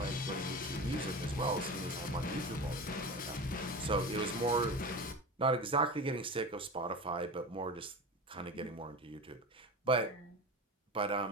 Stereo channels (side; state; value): both; normal; correlation 0.29